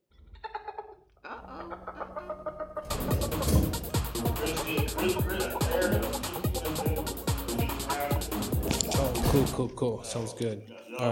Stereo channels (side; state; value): both; identical; correlation 1.00